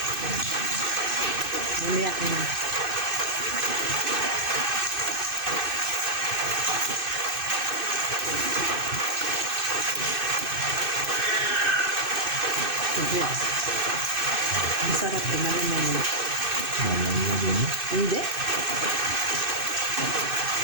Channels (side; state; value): left; late; 2.6 ms